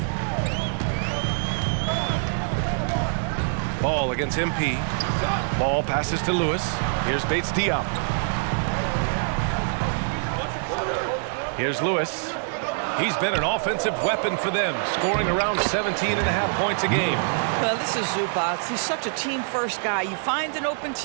Ball against MP. Ball passes to Lewis. Here's Bates Diop. Here's Lewis. He's been an offensive weapon for them, scoring around 17.5 points a game. Well, this is Zubac. He's such a team-first guy. You find an open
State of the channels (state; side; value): silent; left; digital silence